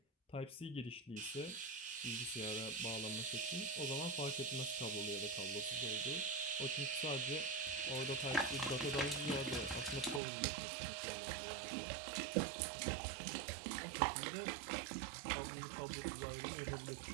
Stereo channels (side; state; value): left; drops out; at 10.2 s